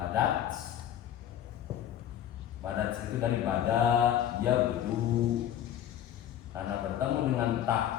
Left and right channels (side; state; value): right; quieter; 10.8 dB